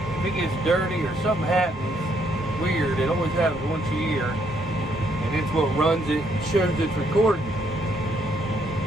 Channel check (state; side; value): normal; both; correlation 0.72